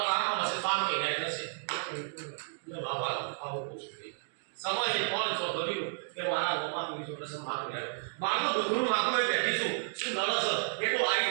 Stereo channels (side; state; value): left; silent; digital silence